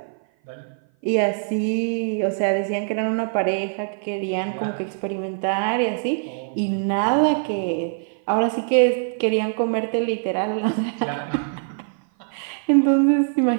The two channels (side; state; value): left; silent; 56 dB below the other